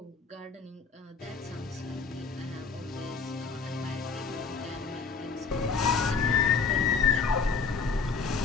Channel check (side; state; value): right; quieter; 5.1 dB